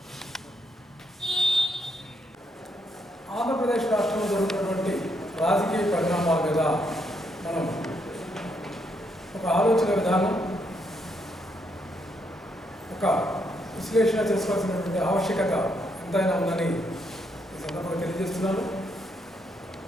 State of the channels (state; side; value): normal; both; correlation 0.76